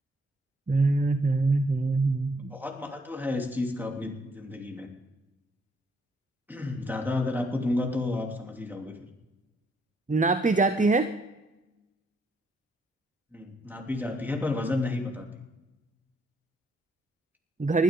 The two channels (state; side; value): normal; both; correlation 0.70